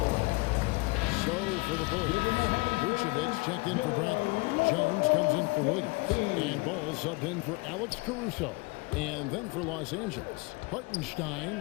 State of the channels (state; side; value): quieter; right; 26.7 dB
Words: So for the Bulls, Vucevic checked in for Bradley. Jones comes in for Williams. And Ball subbed in for Alex Caruso. And then for Los Angeles,